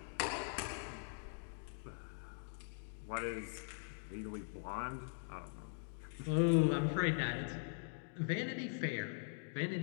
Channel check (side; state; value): right; silent; digital silence